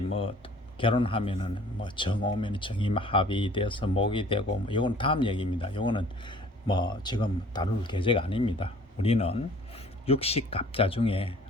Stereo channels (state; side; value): normal; both; correlation 0.52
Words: 결혼하면은 뭐 정 오면 정이 합의돼서 목이 되고, 뭐 이건 다음 얘기입니다. 이거는 뭐 지금 다룰 계제가 아닙니다. 우리는 육식갑자 중에